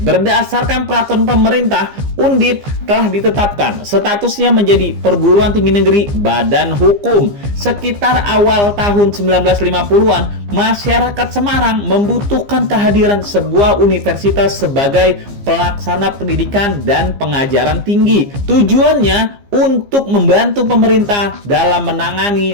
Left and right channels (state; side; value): late; left; 15 ms